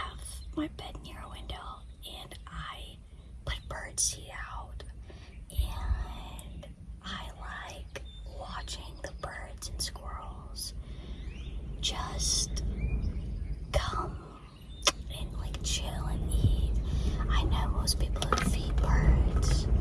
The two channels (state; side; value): identical; both; correlation 1.00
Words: my bed near a window, and I put birdseed out, and I like watching the birds and squirrels just come and chill and eat. I know most people who feed birds